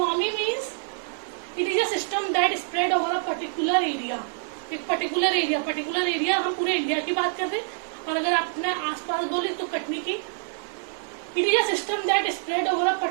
means it is a system that spread over a particular area. एक पर्टिकुलर एरिया हम पूरे इंडिया की बात कर रहे हैं, और अगर आप अपने आसपास बोले तो कटनी की. It is a system that spread over a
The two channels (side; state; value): left; silent; digital silence